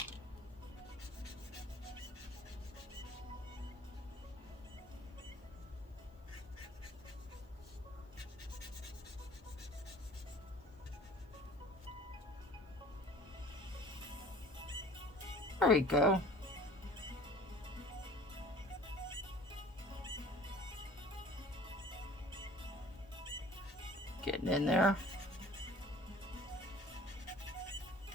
There we go. Getting in there.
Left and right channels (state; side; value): normal; both; correlation 0.47